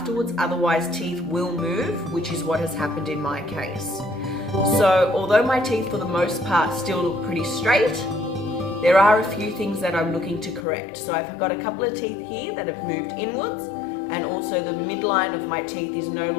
otherwise teeth will move, which is what has happened in my case. So, although my teeth for the most part still look pretty straight, there are a few things that I'm looking to correct. So I've got a couple of teeth here that have moved inwards, and also the midline of my teeth is no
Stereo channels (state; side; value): drops out; right; at 10.7 s